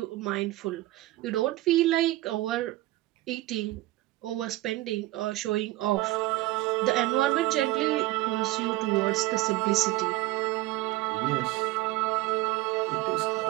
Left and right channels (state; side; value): quieter; left; 17.8 dB